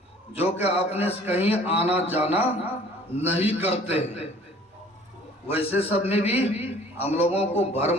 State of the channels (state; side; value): normal; both; correlation 0.52